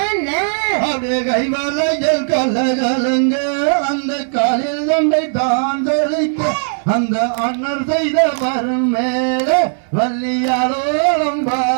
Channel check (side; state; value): left; silent; 68 dB below the other